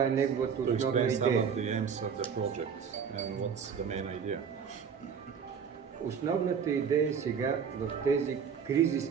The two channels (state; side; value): quieter; left; 6.9 dB